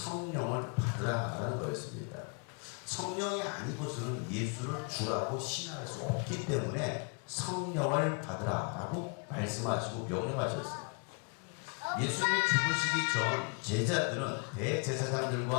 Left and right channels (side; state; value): right; quieter; 36.6 dB